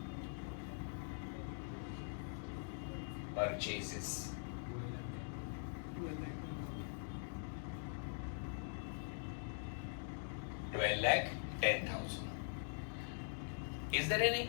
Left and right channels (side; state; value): right; silent; digital silence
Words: purchases, 12,10,000. Is there